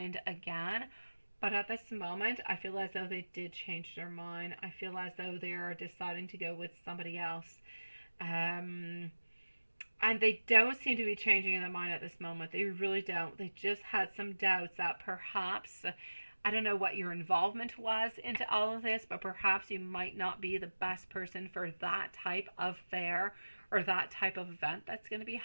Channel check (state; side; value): inverted; both; correlation -1.00